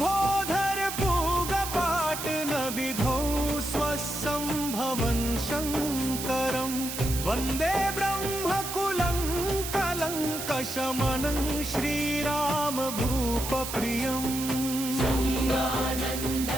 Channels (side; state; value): right; noise; hiss, 6 dB below the sound